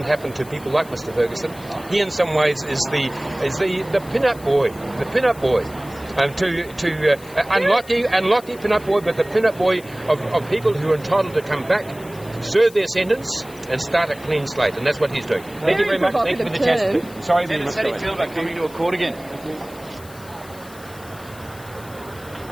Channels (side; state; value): left; noise; hiss, 21 dB below the sound